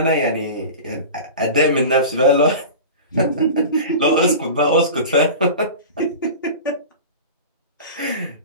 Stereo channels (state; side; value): inverted; both; correlation -0.32